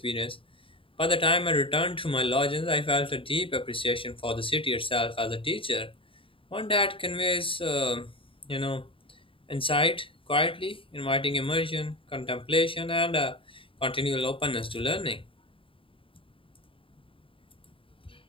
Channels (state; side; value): late; right; 0.26 ms